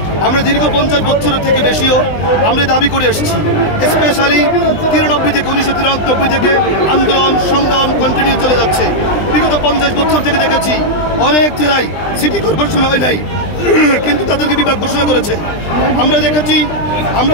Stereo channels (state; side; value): late; right; 20 ms